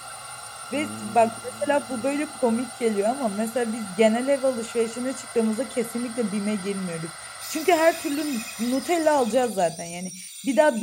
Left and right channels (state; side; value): identical; both; correlation 1.00